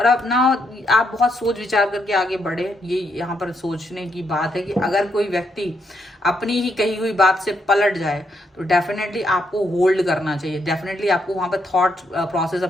अब ना आप बहुत सोच विचार करके आगे बढ़े। ये यहाँ पर सोचने की बात है कि अगर कोई व्यक्ति अपनी ही कही हुई बात से पलट जाए तो डेफिनेटली आपको होल्ड करना चाहिए, डेफिनेटली आपको वहां पर थॉट प्रोसेस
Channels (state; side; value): normal; both; correlation 0.77